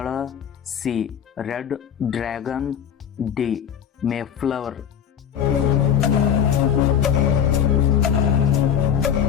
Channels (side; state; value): right; quieter; 8.7 dB